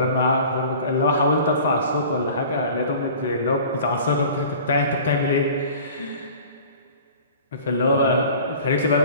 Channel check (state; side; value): inverted; both; correlation -0.44